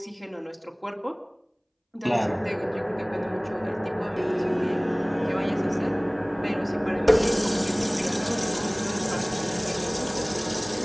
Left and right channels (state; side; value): identical; both; correlation 1.00